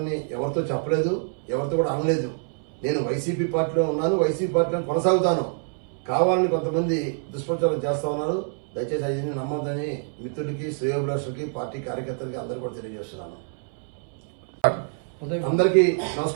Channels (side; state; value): left; silent; 61 dB below the other